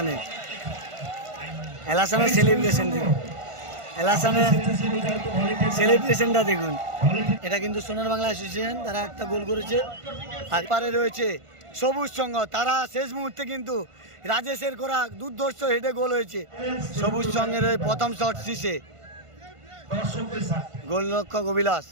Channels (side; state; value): left; late; 1.5 ms